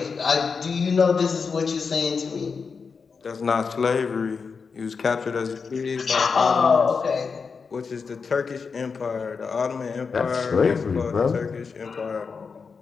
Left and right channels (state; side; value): quieter; right; 5.3 dB